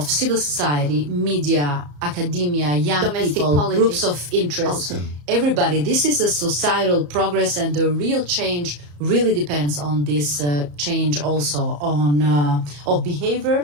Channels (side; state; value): left; late; 34 ms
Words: civil society, media, academia, young domestic people, politics, groups of interest, everybody. This is a societal progress, and the real change really depends on this change also on of behavior